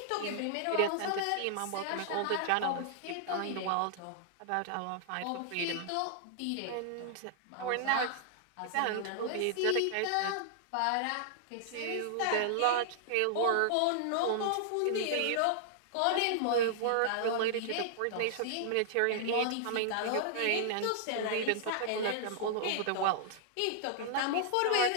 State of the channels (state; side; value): different; both; correlation -0.01